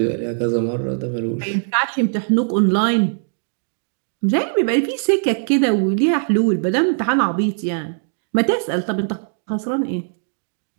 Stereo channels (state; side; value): silent; left; digital silence